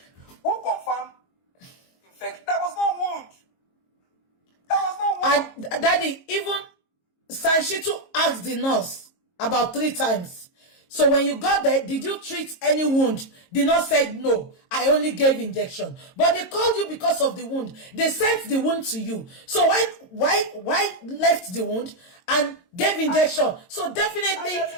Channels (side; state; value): right; late; 22 ms